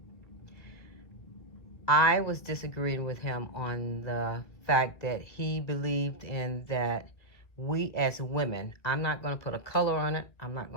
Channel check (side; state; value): right; late; 1.6 ms